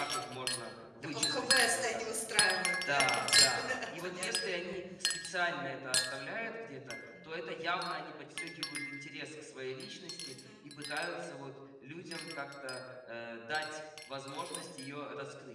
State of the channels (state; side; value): identical; both; correlation 1.00